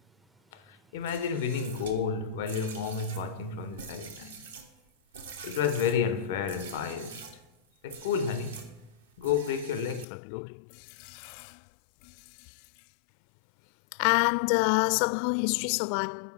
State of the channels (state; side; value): drops out; right; at 10.1 s